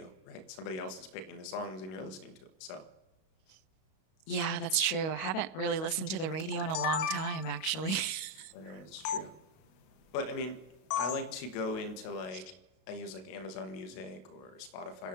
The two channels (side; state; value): right; late; 32 ms